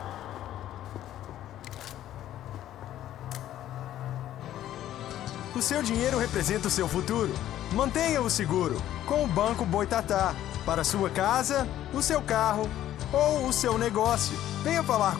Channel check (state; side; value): quieter; right; 12.5 dB